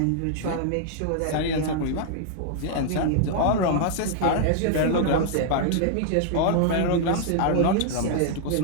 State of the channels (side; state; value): both; different; correlation -0.01